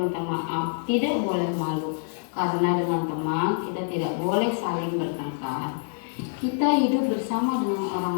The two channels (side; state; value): right; silent; 58 dB below the other